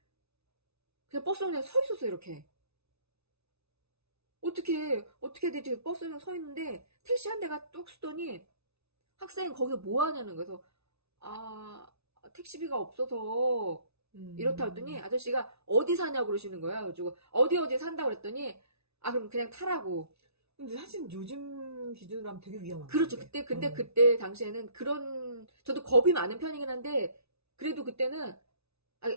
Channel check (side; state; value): left; late; 0.80 ms